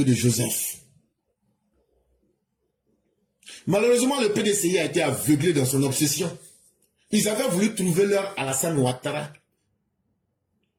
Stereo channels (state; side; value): identical; both; correlation 1.00